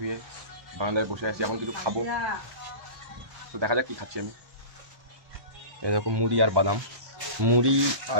বারান্দায় বসে আছি। এখন কিছু খাবো, তো দেখা যাক কি খাচ্ছি আমি। এরকম মুড়ি আর বাদাম, মুড়ি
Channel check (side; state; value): left; late; 1.2 ms